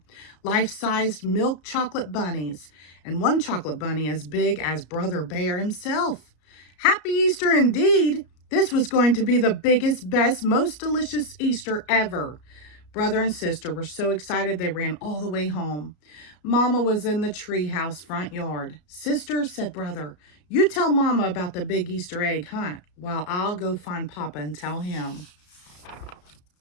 Life-sized milk chocolate bunnies, and one chocolate bunny as big as Brother Bear himself. Happy Easter indeed! This was going to be the biggest, best, most delicious Easter ever. Brother and Sister were so excited they ran all the way home. Mama was in the treehouse front yard. Sister, said Brother, you tell Mama about the big Easter egg hunt while I'll go find Papa and tell him.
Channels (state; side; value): late; right; 33 ms